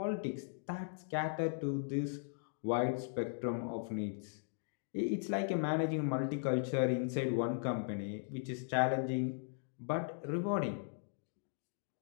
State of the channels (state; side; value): silent; right; digital silence